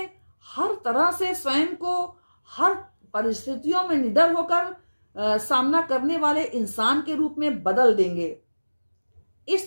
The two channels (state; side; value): inverted; both; correlation -1.00